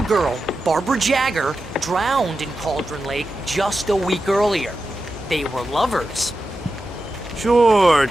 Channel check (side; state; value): both; normal; correlation 0.91